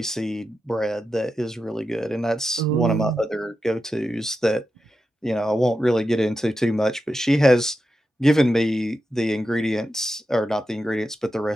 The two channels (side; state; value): both; normal; correlation 0.90